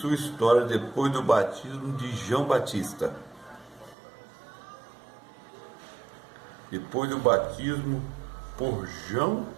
história depois do batismo de João Batista. Depois do batismo por João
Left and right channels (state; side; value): drops out; left; at 4.0 s